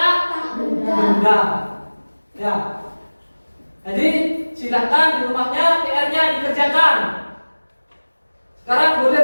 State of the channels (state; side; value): inverted; both; correlation -1.00